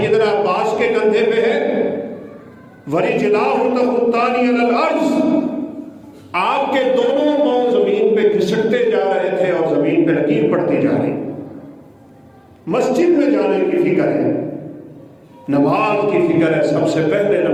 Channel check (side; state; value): both; identical; correlation 1.00